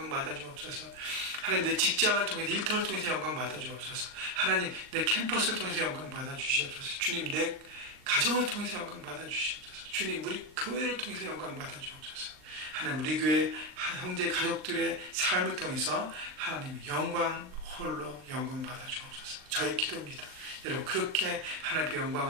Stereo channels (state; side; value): late; left; 39 ms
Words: 받아주옵소서. 하나님 내 직장을 통해서 일터를 통해서 영광 받아주옵소서. 하나님 내 캠퍼스를 통해서 영광 받아주시옵소서. 주님 내 가정을 통해서 영광 받아주시옵소서. 주님 우리 교회를 통해서 영광 받아주옵소서. 하나님 우리 교회 형제 가족들의 삶을 통해서 하나님의 영광 홀로 영광 받아주옵소서. 저의 기도입니다. 여러분 그렇게 하나님의